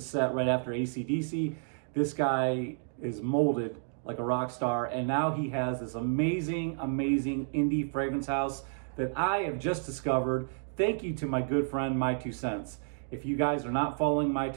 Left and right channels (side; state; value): left; silent; digital silence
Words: right after AC/DC. This guy is molded like a rock star, and now he has this amazing indie fragrance house that I have just discovered. Thank you to my good friend, My Two Cents. If you guys are not following My